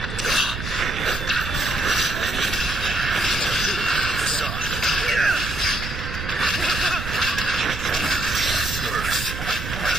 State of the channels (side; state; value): right; noise; rumble, 7 dB below the sound